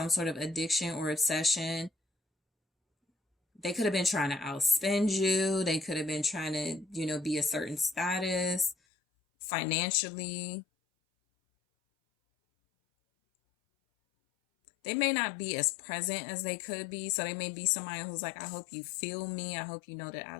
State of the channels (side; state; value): right; drops out; at 8.8 s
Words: sort of addiction or obsession. They could have been trying to outspend you. They could have been trying to, be a certain status financially. They may not be as present as they could be. So they may be somebody who's like, I hope you feel me. I hope you know that I